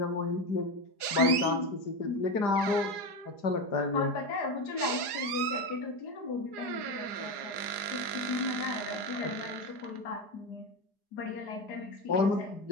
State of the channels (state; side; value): late; right; 4.8 ms